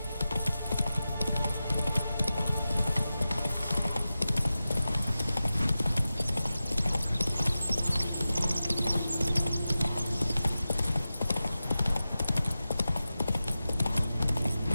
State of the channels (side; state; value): both; inverted; correlation -0.94